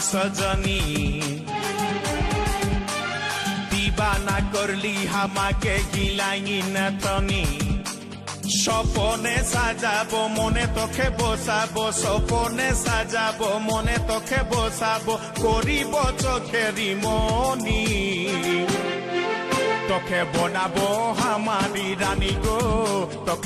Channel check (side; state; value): both; identical; correlation 1.00